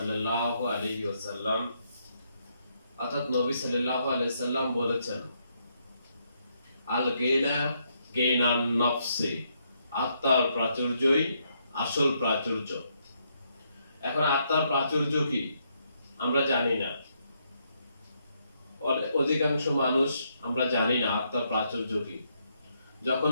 আলাইহি ওয়াসাল্লাম, অর্থাৎ নবী সাল্লাল্লাহু আলাইহি সাল্লাম বলেছেন, আল গিনা গিনান নফসি, আত্মার প্রাচুর্যই আসল প্রাচুর্য। এখন আত্মার প্রাচুর্য কি আমরা জানি না, অধিকাংশ মানুষ আমরা জানি না আত্মার প্রাচুর্য কি। যখন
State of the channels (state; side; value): inverted; both; correlation -0.76